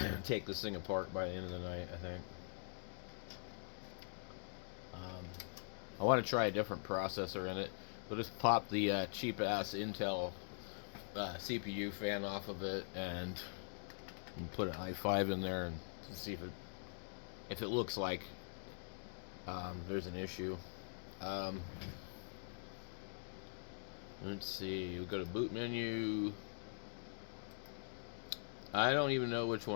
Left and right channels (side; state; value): right; silent; digital silence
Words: take this thing apart by the end of the night, I think. I want to try a different processor in it. We'll just pop the cheap ass Intel CPU fan off of it and put an i5 in there and see if it looks like there's an issue. Um, let's see. We'll go to boot menu. I don't even know which